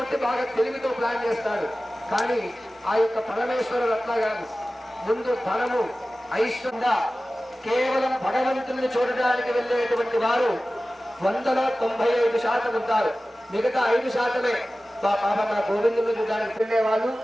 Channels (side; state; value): both; normal; correlation 0.96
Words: బాగా తెలివితో ప్లాన్ చేస్తాడు. కానీ ఆ యొక్క పరమేశ్వరుడు అట్లా కాదు. ముందు ధనము, ఐశ్వర్య, కేవలం భగవంతుని చూడడానికి వెళ్ళేటువంటి వారు 195% ఉంటారు. మిగతా 5% మన గోవిందుని చూడడానికి వెళ్ళే వాళ్ళు